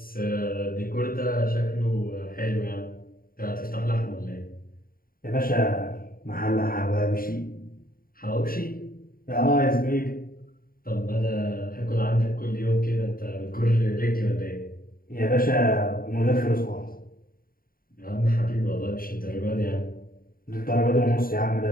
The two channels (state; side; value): late; right; 0.42 ms